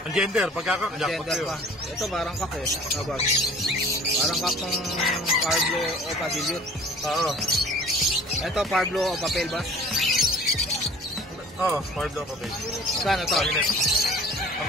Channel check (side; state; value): both; normal; correlation 0.46